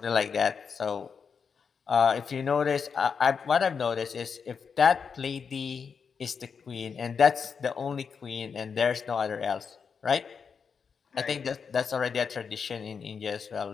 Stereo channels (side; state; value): right; quieter; 6.1 dB